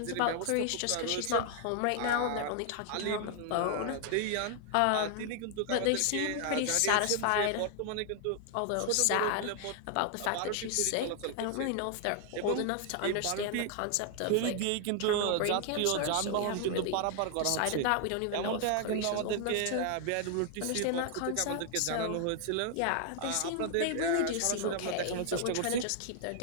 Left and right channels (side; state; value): both; different; correlation 0.00